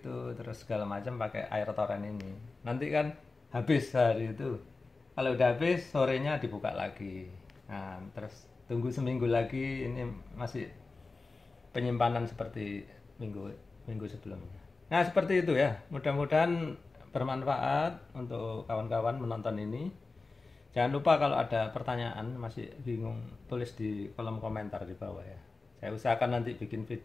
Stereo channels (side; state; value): right; quieter; 3.7 dB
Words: terus segala macam pakai air toren ini. Nanti kan habis hari itu. Kalau udah habis sorenya dibuka lagi. Nah terus tunggu seminggu lagi ini masih penyimpanan seperti minggu minggu sebelumnya. Nah seperti itu ya. Mudah-mudahan bermanfaat untuk kawan-kawan menonton ini. Jangan lupa kalau ada pertanyaan masih bingung tulis di kolom komentar di bawah ya. Saya usahakan nanti bikin